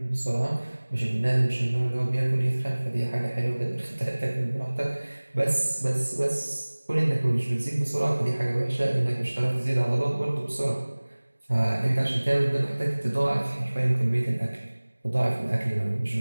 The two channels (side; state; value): both; inverted; correlation -1.00